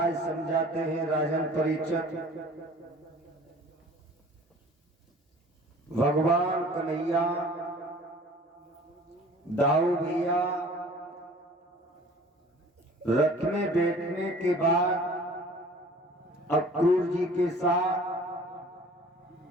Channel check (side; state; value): both; normal; correlation 0.47